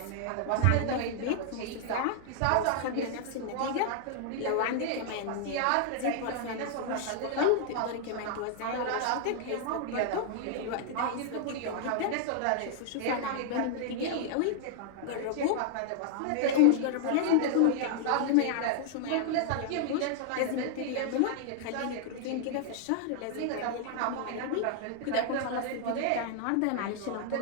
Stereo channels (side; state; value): both; different; correlation 0.00